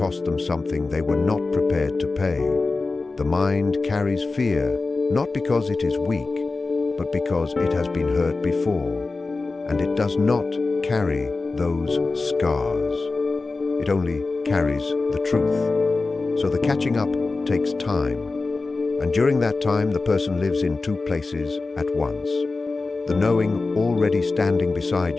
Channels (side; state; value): right; quieter; 3.7 dB